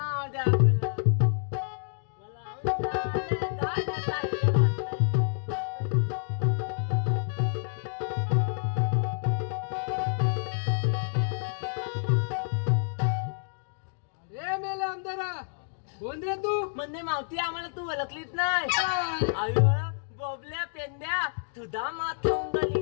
मावती आम्हाला तू ओळखलीच नाही काय? अयो बोबल्या पेंड्या तुझा मात लावून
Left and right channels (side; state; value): right; silent; digital silence